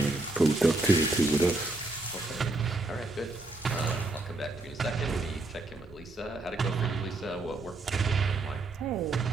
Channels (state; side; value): quieter; left; 3.1 dB